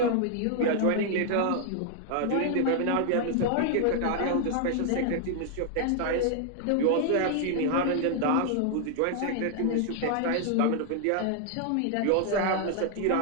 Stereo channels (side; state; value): both; different; correlation 0.00